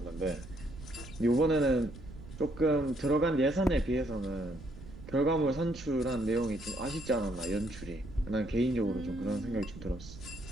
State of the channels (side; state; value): right; noise; rumble, 15 dB below the sound